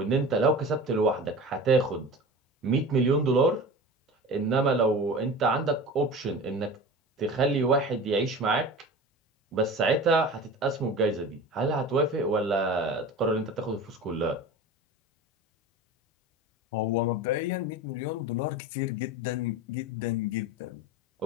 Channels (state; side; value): normal; both; correlation 0.34